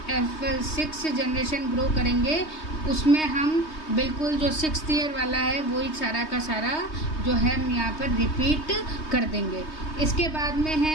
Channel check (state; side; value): late; right; 3.2 ms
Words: F6 जनरेशन ग्रो करेंगे, उसमें हम बिल्कुल जो 6th ईयर वाला है वही सारा का सारा जो है हम यहाँ पर रिपीट कर देंगे। इसके बाद में